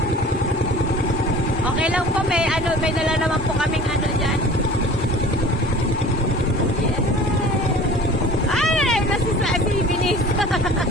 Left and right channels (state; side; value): normal; both; correlation 0.43